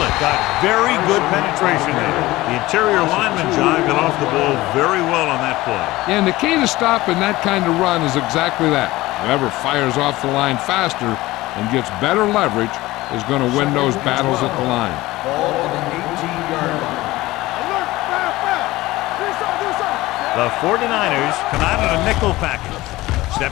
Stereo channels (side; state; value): right; quieter; 18.6 dB